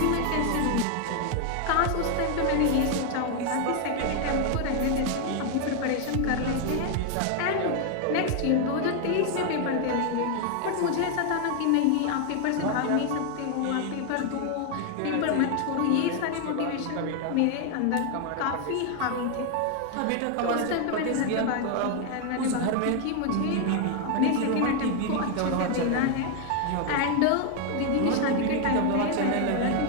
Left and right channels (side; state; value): both; different; correlation 0.01